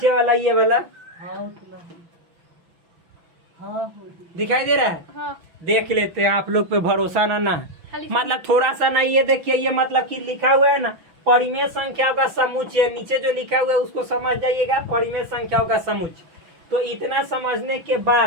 वाला ये वाला हाँ उतना ही। हाँ हो गई। दिखाई दे रहा है? हाँ। देख लेते हैं, आप लोग पे भरोसा ना खाली मतलब थोड़ा सा ना, ये देखिए ये मतलब कि लिखा हुआ है ना परिमेय संख्याओं का समुच्चय, नीचे जो लिखा हुआ है उसको समझ जाइएगा, परिमेय संख्याओं का समुच्चय। तो इतना समझने के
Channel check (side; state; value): left; late; 6.0 ms